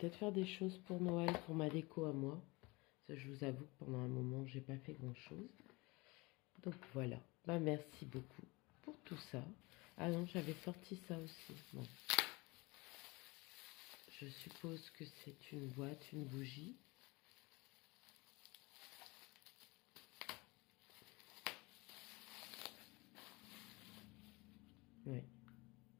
faire des choses pour Noël, pour ma déco à moi. Ça, je vous avoue que pendant un moment, j'ai pas fait grand-chose. Donc voilà. Bah, merci beaucoup pour tout ça. Ah non, j'avais sorti ça aussi. Bon. Je suppose que c'est une boîte, une bougie. Oui.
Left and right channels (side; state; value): right; quieter; 24.6 dB